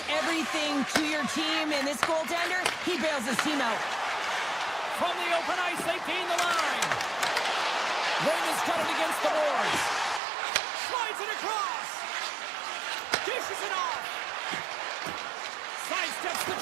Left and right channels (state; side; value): drops out; left; at 10.2 s